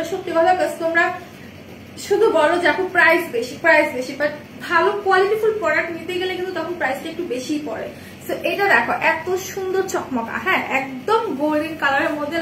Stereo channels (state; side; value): identical; both; correlation 1.00